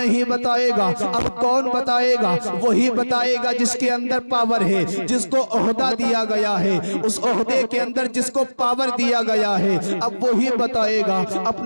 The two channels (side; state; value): both; inverted; correlation -1.00